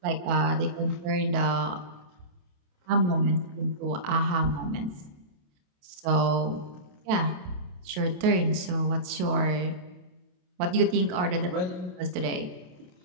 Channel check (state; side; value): late; left; 28 ms